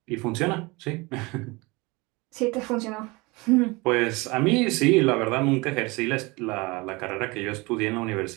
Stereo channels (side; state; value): left; quieter; 25.1 dB